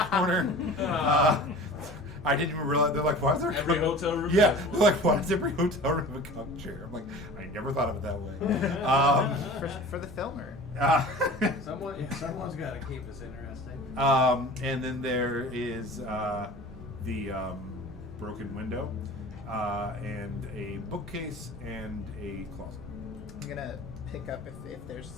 corner. I didn't even realize. They're like, why is there Every cuck-" hotel room. Yeah, has they're one. like, why does every hotel room have a cuck chair? I'm like, I never thought of it that way. For the filmer. Someone's got to keep this interesting. And then there is the broken window, and a bookcase and a closet. I'm gonna pick up if there's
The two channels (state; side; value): noise; right; hum, 21 dB below the sound